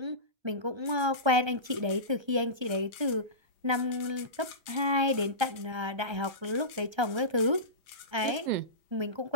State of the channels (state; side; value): late; left; 1.3 ms